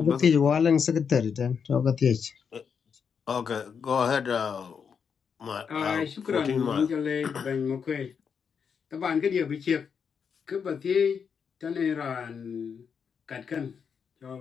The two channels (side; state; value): right; quieter; 6.6 dB